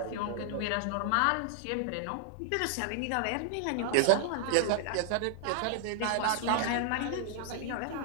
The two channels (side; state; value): both; different; correlation -0.01